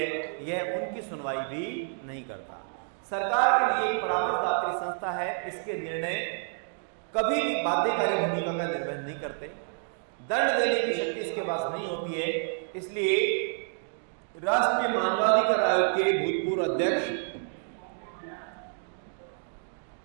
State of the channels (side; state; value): left; silent; digital silence